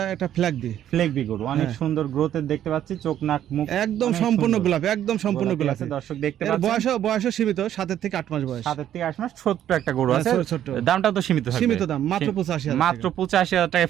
একটা ফ্ল্যাগবি। ফ্ল্যাগবি গরু অনেক সুন্দর গ্রোথের দেখতে পাচ্ছি, চোখ নাক মুখ একদম সম্পূর্ণ গোলাপি, একদম সম্পূর্ণ গোলাপি। দর্শক দেখতে পাচ্ছেন বয়স সীমিত, 7 থেকে 8 মাস বয়স। 7 থেকে 8 মাস, ছোট্ট একটা গরু আছে। ছোট। দামটা তো সীমিত থাকবে। সীমিত দাম, মাত্র 85,000। মাত্র 85,000 টাকা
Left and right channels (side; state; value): left; quieter; 11.1 dB